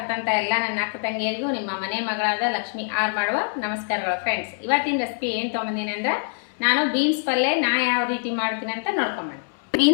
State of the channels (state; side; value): silent; right; 62 dB below the other